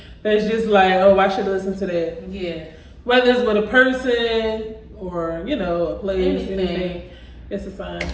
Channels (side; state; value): both; identical; correlation 1.00